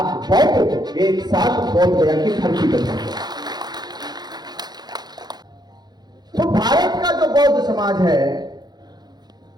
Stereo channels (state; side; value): late; left; 0.20 ms